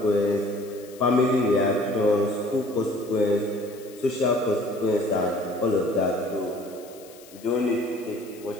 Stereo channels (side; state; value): left; noise; hiss, 22 dB below the sound